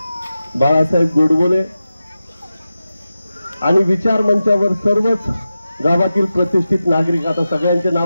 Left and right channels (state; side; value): inverted; both; correlation -0.93